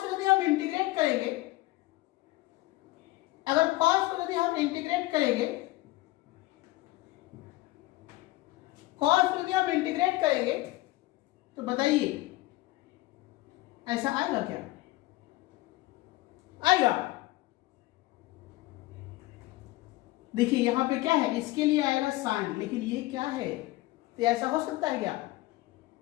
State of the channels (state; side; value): quieter; right; 19.0 dB